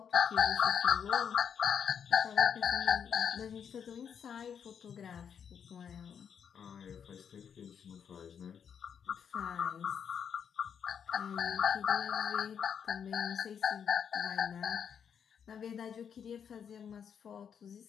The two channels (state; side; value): quieter; right; 7.6 dB